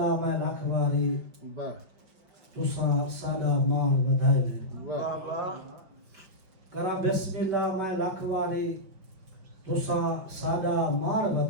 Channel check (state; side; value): late; left; 5.1 ms